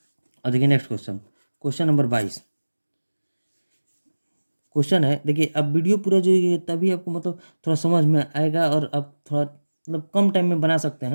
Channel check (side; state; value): both; inverted; correlation -1.00